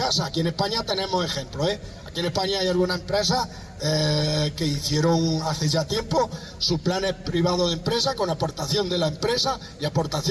Aquí en España tenemos ejemplos, Aquí en España hay algunas empresas que hicieron hace ya tiempo sus planes privados de empresa con aportación de la empresa y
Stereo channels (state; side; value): identical; both; correlation 1.00